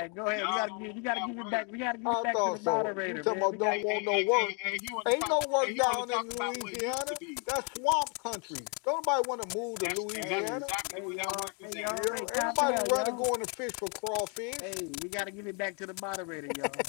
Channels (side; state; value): right; quieter; 36.6 dB